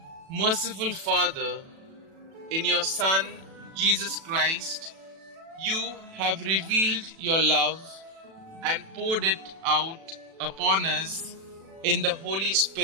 merciful Father, in your Son, Jesus Christ, you have revealed your love and poured it out upon us in the Holy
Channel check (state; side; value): late; left; 36 ms